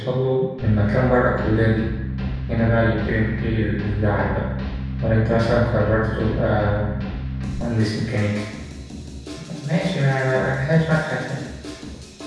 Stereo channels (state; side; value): identical; both; correlation 1.00